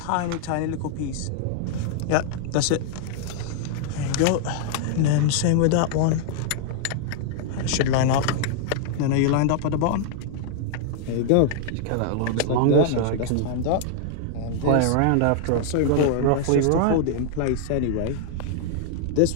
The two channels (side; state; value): both; different; correlation -0.01